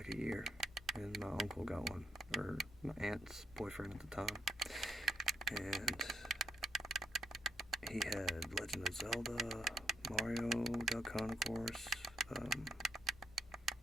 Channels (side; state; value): both; normal; correlation 0.75